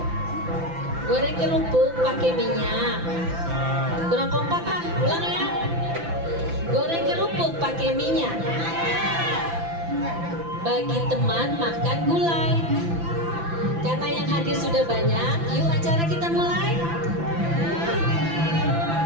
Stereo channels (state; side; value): late; left; 5.9 ms